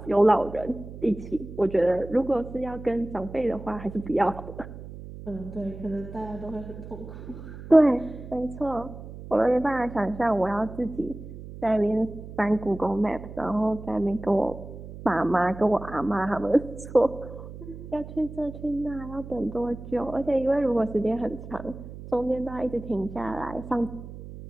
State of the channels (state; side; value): noise; right; hum, 13 dB below the sound